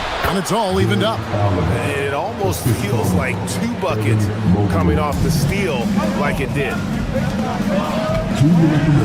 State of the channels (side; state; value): both; identical; correlation 1.00